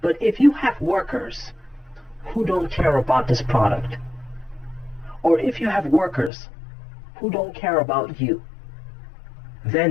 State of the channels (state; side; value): drops out; right; at 6.3 s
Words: but if you have workers who don't care about this product, or if you have workers who don't care about you,